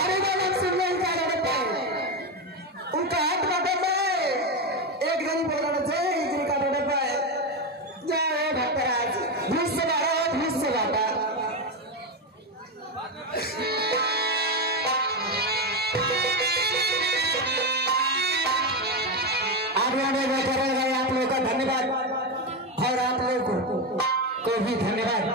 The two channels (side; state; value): both; normal; correlation 0.12